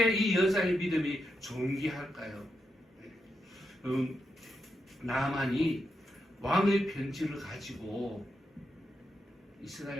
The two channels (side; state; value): both; normal; correlation 0.85